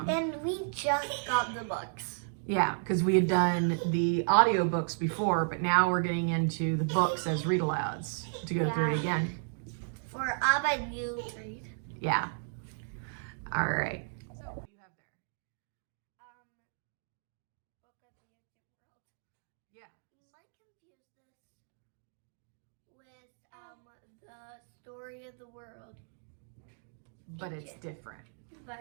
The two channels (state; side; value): silent; left; digital silence